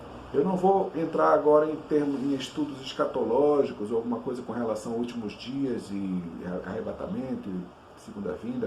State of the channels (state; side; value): identical; both; correlation 1.00